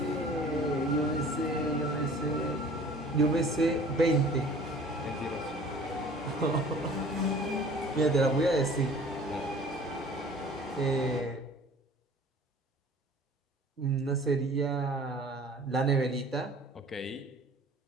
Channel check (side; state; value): both; normal; correlation 0.48